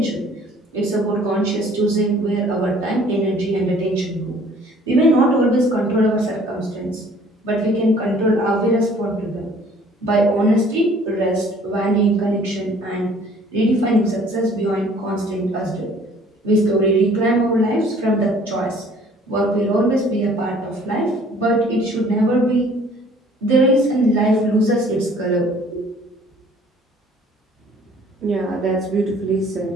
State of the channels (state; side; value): normal; both; correlation 0.55